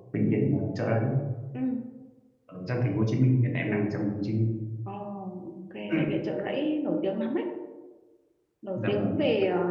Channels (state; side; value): identical; both; correlation 1.00